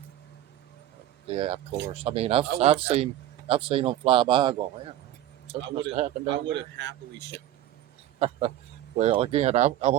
it. Yeah, of course. I mean, I've seen them fly by. Going, man, something must have happened. I would have happily showed it. Well, again, I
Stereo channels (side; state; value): left; quieter; 13.1 dB